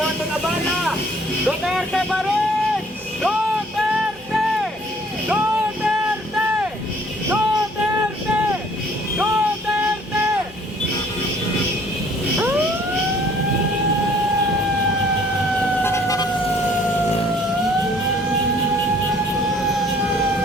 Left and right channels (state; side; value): normal; both; correlation 0.58